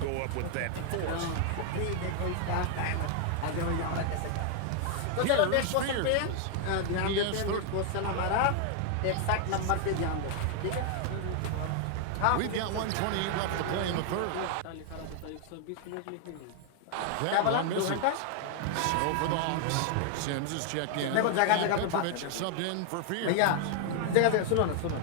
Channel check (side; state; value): both; different; correlation 0.00